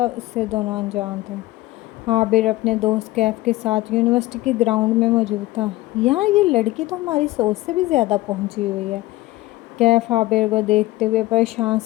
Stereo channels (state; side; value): quieter; right; 18.0 dB